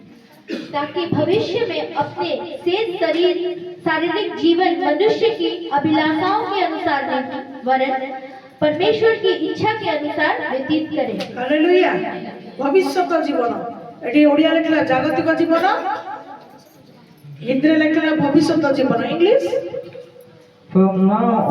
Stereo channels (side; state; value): both; identical; correlation 1.00